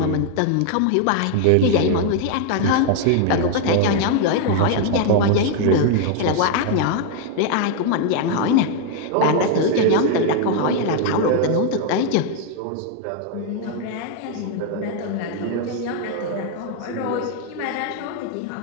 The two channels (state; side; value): different; both; correlation 0.00